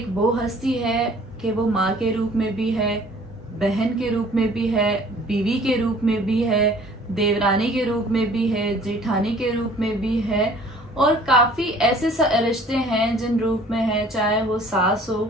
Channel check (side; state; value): both; normal; correlation 0.52